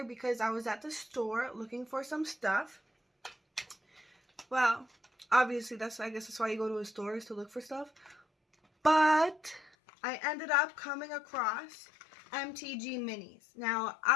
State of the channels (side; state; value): right; drops out; at 9.7 s